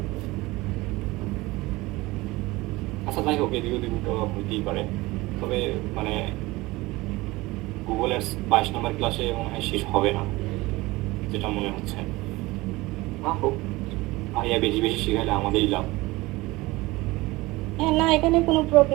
আচ্ছা যাই হোক, এদিক ওদিক তো হইতেই পারে, তবে মানে গুগল অ্যাডস 22 নম্বর ক্লাসে মনে হয় শেষ হবে না, যেটা মনে হচ্ছে। ভাইয়া বেশি বেশি শিখাইলে আমাদেরই লাভ। হ্যাঁ না, এখানে কোনো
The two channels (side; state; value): left; quieter; 20.7 dB